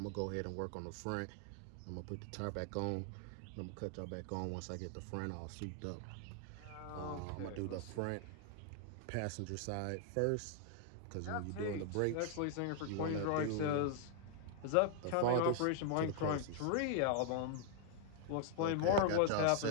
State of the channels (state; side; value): different; both; correlation 0.00